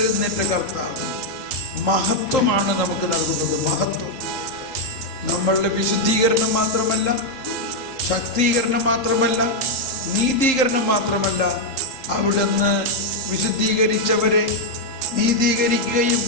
കർത്താവ്, മഹത്വമാണ് നമുക്ക് നൽകുന്നത്. മഹത്വം നമ്മളുടെ വിശുദ്ധീകരണം മാത്രമല്ല, ശക്തീകരണം മാത്രമല്ല, നീതീകരണം മാത്രമല്ല, അവിടുന്ന് വിശുദ്ധീകരിച്ചവരെ നീതീകരിക്കുകയും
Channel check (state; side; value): late; right; 3.8 ms